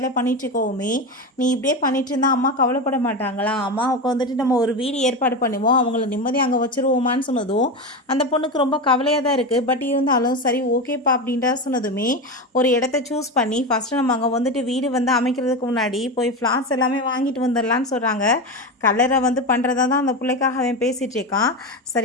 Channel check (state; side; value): normal; both; correlation 0.19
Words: பண்ணிட்டு இருக்கோமே, நீ இப்படியே பண்ணிட்டு இருந்தால் அம்மா கவலைப்பட மாட்டாங்களா, அம்மாவுக்கு வந்துட்டு நம்ம ஒரு வீடு ஏற்பாடு பண்ணுவோம், அவங்கள நிம்மதியாக அங்கே வச்சுருவோமான்னு சொன்னதும் அந்த பொண்ணுக்கு ரொம்ப கவலையாக தான் இருக்குது. பட் இருந்தாலும் சரி ஓகேப்பா அப்படின்றா சொன்னதுமே ஒரு இடத்த சூஸ் பண்ணி ஃபஸ்ட்டு நம்ம அங்கே வந்துட்டு வீடு வந்து அமைக்கிறதுக்கு முன்னாடி போய் ஃப்ளார்ஸ் எல்லாமே வாங்கிட்டு வந்துடலான்னு சொல்கிறாங்க. கலரை வந்து பண்ணுறதா தான் அந்த பிள்ளைக்காக அவன் பேசிகிட்டு இருக்கான்.